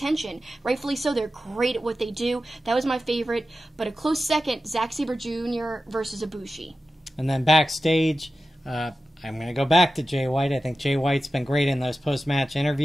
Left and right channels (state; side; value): normal; both; correlation 0.93